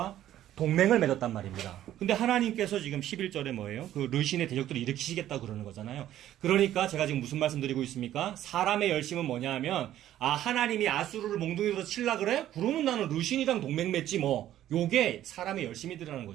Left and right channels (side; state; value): left; quieter; 12.5 dB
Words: 동맹을 맺었단 말입니다. 근데 하나님께서 지금 11절에 뭐예요? 그 르신의 대적들을 일으키시겠다 그러는 거잖아요. 그러니까 제가 지금 무슨 말씀 드리고 있습니까? 사람의 열심은 뭐냐 하면 하나님이 아수르를 몽둥이로 칠라 그래? 그러면 나는 르신이랑 동맹 맺지 뭐. 요게 사람의 열심이더라는